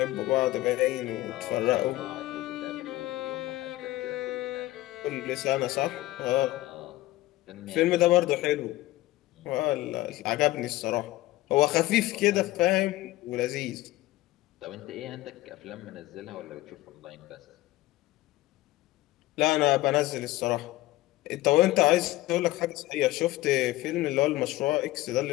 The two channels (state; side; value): quieter; right; 17.3 dB